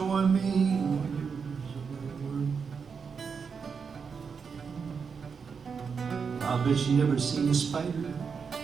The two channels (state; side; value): quieter; left; 5.9 dB